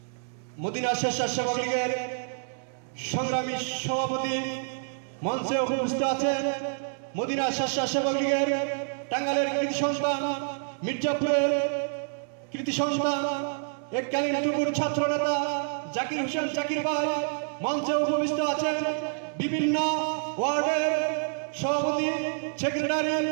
মদিনা স্বেচ্ছাসেবক লীগের সংগ্রামী সভাপতি, মঞ্চে উপস্থিত আছেন মদিনা স্বেচ্ছাসেবক লীগের টাঙ্গাইলের কৃতি সন্তান, মির্জাপুরের কৃতি সন্তান, এককালীন টুকুর ছাত্র নেতা জাকির হোসেন জাকির ভাই, মঞ্চে উপস্থিত আছেন বিভিন্ন ওয়ার্ডের সভাপতি, সেক্রেটারি,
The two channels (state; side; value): silent; left; 59 dB below the other